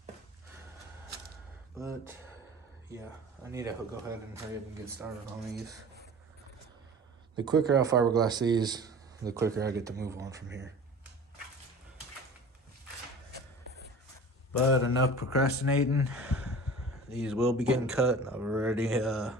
But yeah, I need to go ahead and hurry up and get started on these. The quicker I fiberglass these, the quicker I get to move on from here. But enough procrastinating. These will be getting cut. I've already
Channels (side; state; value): both; normal; correlation 0.40